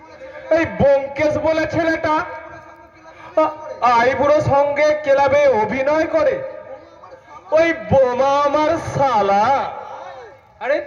এই ব্যোমকেশ বলে ছেলেটা আইবুড়ো সঙ্গে ক্লাবে অভিনয় করে, ওই বোমা আমার শালা। আরে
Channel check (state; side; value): identical; both; correlation 1.00